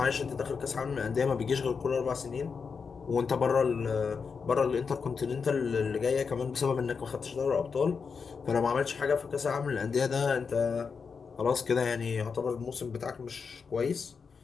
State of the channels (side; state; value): right; quieter; 5.6 dB